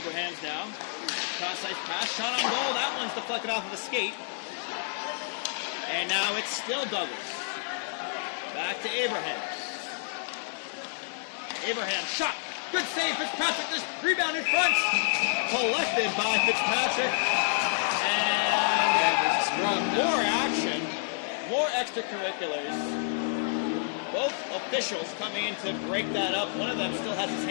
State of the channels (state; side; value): silent; right; 59 dB below the other